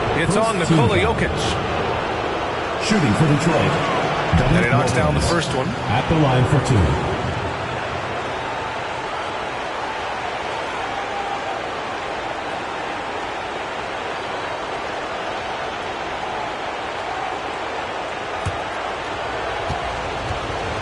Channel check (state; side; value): identical; both; correlation 1.00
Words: It's on Nikola-Jokic. Shooting for Detroit. And he knocks down the first one. At the line for 2.